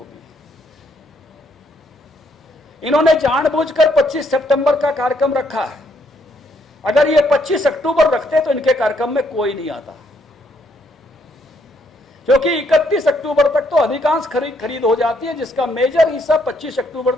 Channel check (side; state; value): both; normal; correlation 0.71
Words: इन्होंने जानबूझकर 25 सितंबर का कार्यक्रम रखा है। अगर ये 25 अक्टूबर रखते तो इनके कार्यक्रम में कोई नहीं आता, क्योंकि 31 अक्टूबर तक तो अधिकांश खरीद हो जाती है, जिसका मेजर हिस्सा 25 अक्टूबर